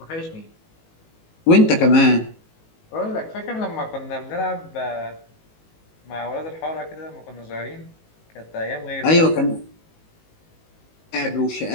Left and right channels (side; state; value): right; late; 19 ms